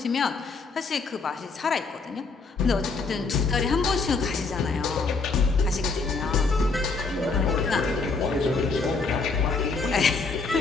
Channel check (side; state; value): right; quieter; 4.2 dB